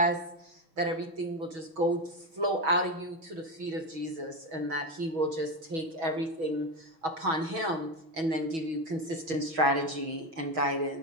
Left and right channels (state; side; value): late; left; 6.2 ms